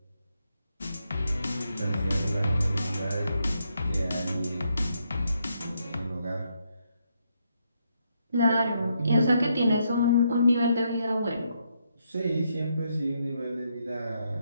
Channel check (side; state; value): both; inverted; correlation -0.78